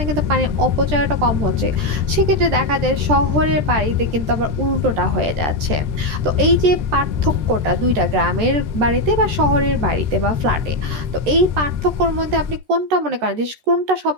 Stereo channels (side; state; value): left; late; 13 ms